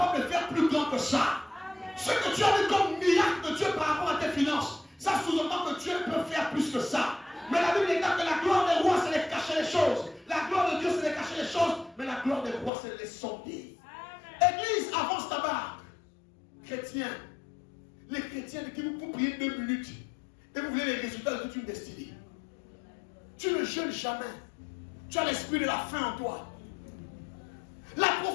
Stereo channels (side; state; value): right; drops out; at 12.7 s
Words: de faire plus grand que ça. Ce que tu as vu comme miracle de Dieu par rapport à tes finances, ça sous-entend que Dieu peut faire plus que ça. Mais la Bible déclare que la gloire des rois, c'est de cacher les choses. La gloire de Dieu, c'est de cacher les choses. Mais la gloire des rois, c'est de les sonder. Église, avance ta barque. Chrétiens, les chrétiens qui vous priez 2 minutes et vous voulez les résultats de toute une destinée. Tu ne jeûnes jamais. Tu as l'esprit de la faim en toi. La